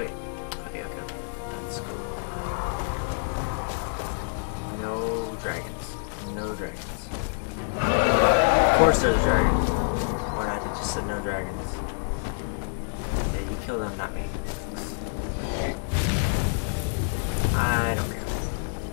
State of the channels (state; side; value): silent; right; digital silence